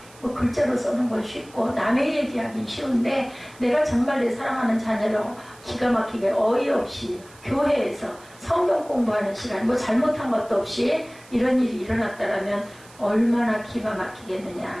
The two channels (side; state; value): right; noise; hiss, 24 dB below the sound